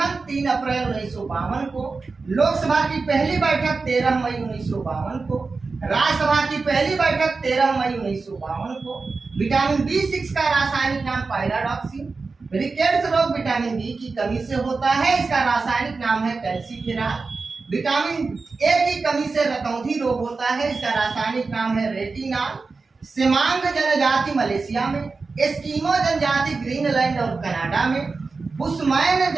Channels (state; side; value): quieter; left; 4.2 dB